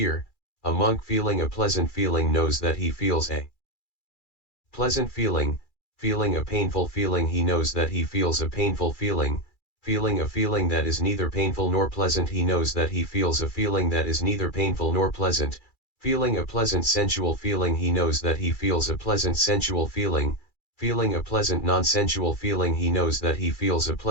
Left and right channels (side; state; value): right; late; 2.3 ms